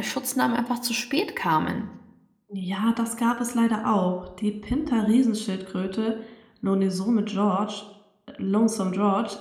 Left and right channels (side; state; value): both; identical; correlation 1.00